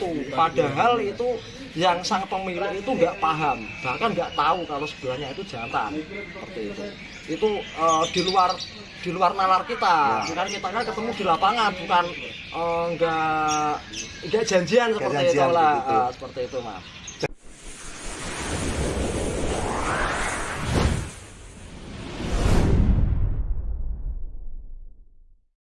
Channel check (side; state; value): both; identical; correlation 1.00